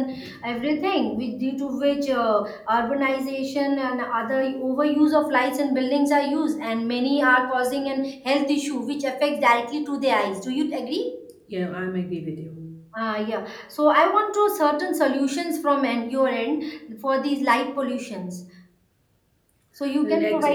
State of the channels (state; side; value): identical; both; correlation 1.00